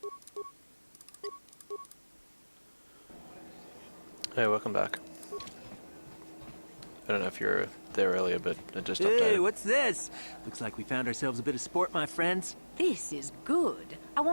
Hey, welcome back. I don't know if you were there earlier, but it just Hey, updated. what's this? Looks like we found ourselves a bit of sport, my friends. This is good. I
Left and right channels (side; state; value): both; inverted; correlation -1.00